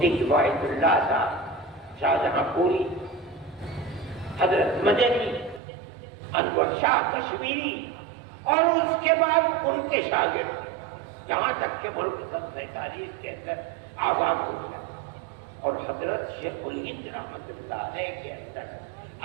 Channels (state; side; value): drops out; left; at 5.6 s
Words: کفایت اللہ صاحب, شاہجہاں پوری, حضرت مدنی, انور شاہ کشمیری اور اس کے بعد ان کے شاگرد، یہاں تک کہ ملک 47 کے اندر آباد ہو گیا، اور حضرت شیخ الہند رحمۃ اللہ علیہ کے اندر